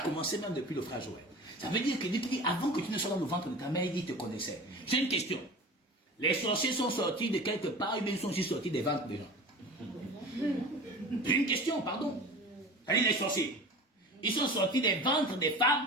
commencé même depuis le frère Joël. Ça veut dire que Dieu dit, avant que tu ne sois dans le ventre de ta mère, il te connaissait. J'ai une question. Les sorciers sont sortis de quelque part, ou bien ils sont aussi sortis des ventres des gens? J'ai une question, pardon. C'est-à-dire les sorciers. Ils sont sortis des ventres des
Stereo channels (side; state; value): both; normal; correlation 0.36